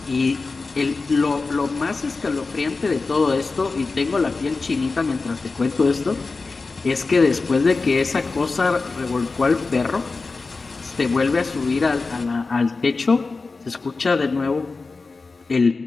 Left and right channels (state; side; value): quieter; right; 4.0 dB